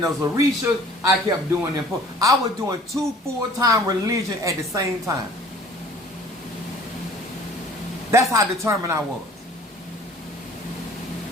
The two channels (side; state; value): both; normal; correlation 0.51